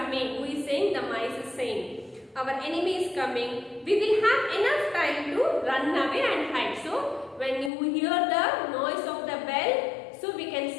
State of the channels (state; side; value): drops out; right; at 7.7 s